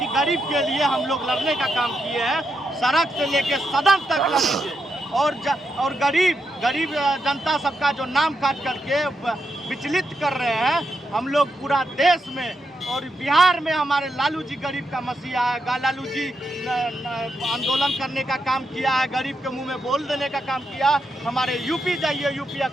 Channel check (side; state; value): both; normal; correlation 0.83